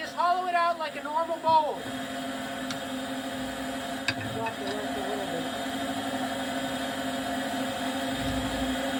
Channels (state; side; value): identical; both; correlation 1.00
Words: hollow it out like a normal bowl.